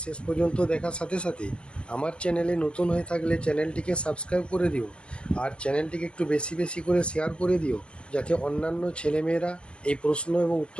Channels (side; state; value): right; late; 0.051 ms